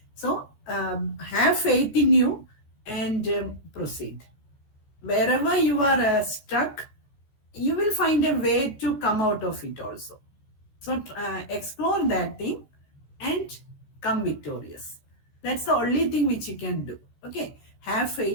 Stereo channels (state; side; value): late; right; 14 ms